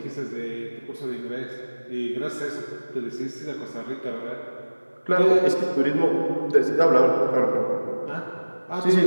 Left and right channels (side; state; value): both; inverted; correlation -1.00